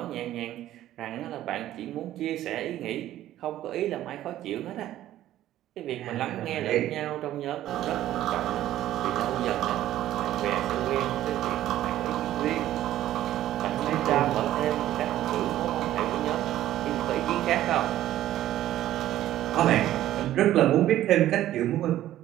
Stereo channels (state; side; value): quieter; left; 13.4 dB